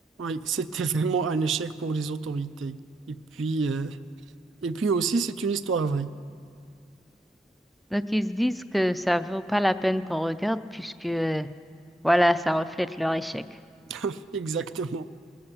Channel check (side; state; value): both; normal; correlation 0.80